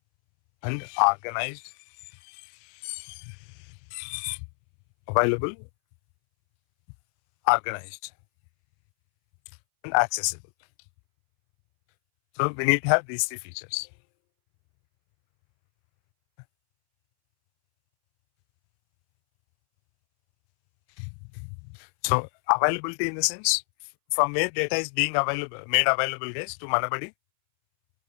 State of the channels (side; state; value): right; silent; 60 dB below the other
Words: and organized. Available, organized, and accessible. So we need to have these three features. So availability in the sense from where data is being made available, guys, to Manabadi.